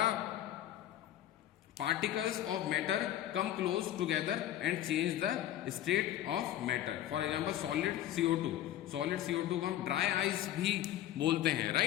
particles of matter come close together and change the state of matter. For example, solid CO2, solid CO2 को हम dry ice भी बोलते हैं,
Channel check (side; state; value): right; quieter; 12.5 dB